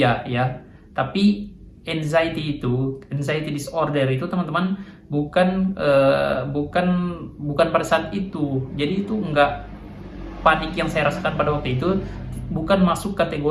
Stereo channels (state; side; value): identical; both; correlation 1.00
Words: ya, tapi anxiety disorder itu teman-teman bukan pada saat itu. Jadi itu enggak panik yang saya rasakan pada waktu itu, bukan masuk